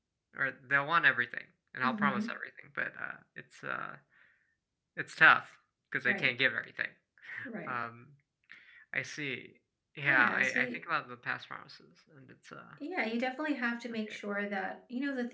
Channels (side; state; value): both; identical; correlation 1.00